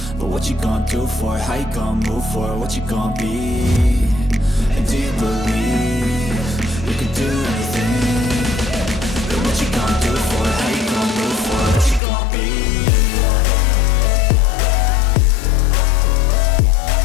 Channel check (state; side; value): drops out; right; at 12.0 s